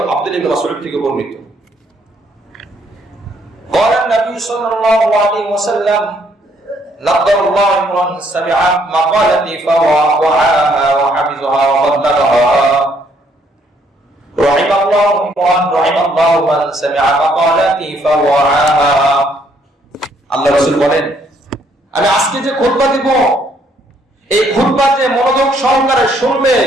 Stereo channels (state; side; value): normal; both; correlation 0.68